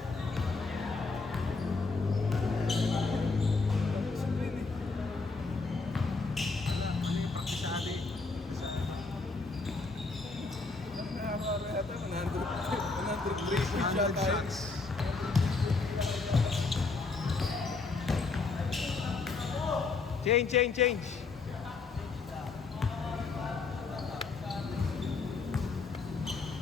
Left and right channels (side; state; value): right; quieter; 4.1 dB